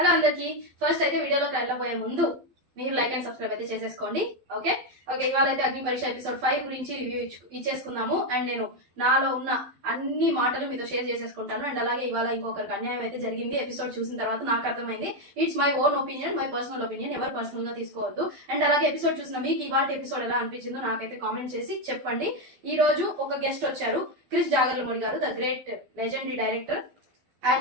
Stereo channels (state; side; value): late; left; 12 ms